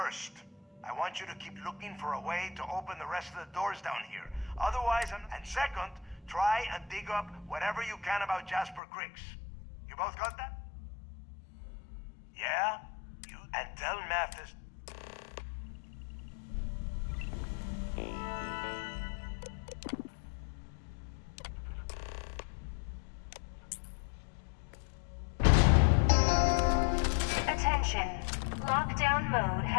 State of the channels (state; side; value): drops out; right; at 8.8 s